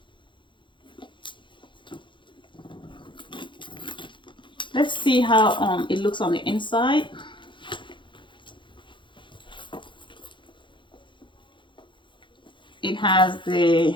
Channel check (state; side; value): late; right; 0.23 ms